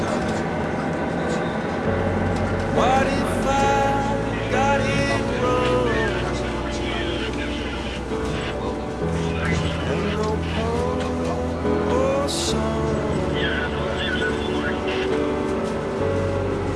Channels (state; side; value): identical; both; correlation 1.00